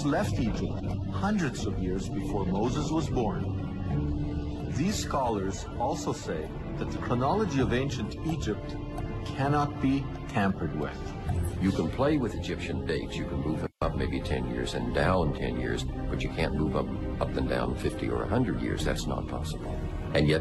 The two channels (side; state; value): both; identical; correlation 1.00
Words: left Egypt hundreds of years before Moses was born. These scholars also say that the chronology of ancient Egypt cannot be tampered with. You can play with Egyptian dates. You can move up maybe 10 years and down 10 years, but you can't move up and down 50 or 100 years. That's not possible. And